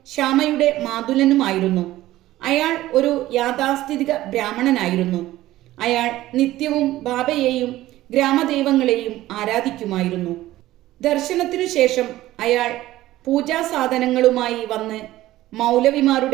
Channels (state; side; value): quieter; left; 15.7 dB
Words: ശ്യാമയുടെ മാതുലനുമായിരുന്നു. അയാൾ ഒരു യാഥാസ്ഥിതിക ബ്രാഹ്മണനായിരുന്നു. അയാൾ നിത്യവും ബാബയെയും ഗ്രാമദൈവങ്ങളെയും ആരാധിക്കുമായിരുന്നു. ദർശനത്തിനു ശേഷം അയാൾ പൂജാസാധനങ്ങളുമായി വന്ന്